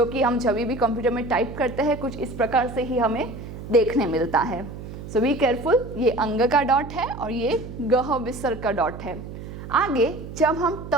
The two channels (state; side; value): noise; right; hum, 11 dB below the sound